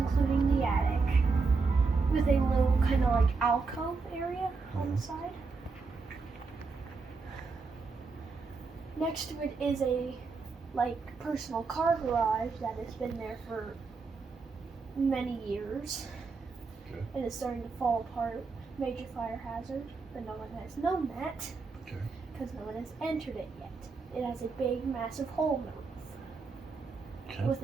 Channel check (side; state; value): left; quieter; 4.4 dB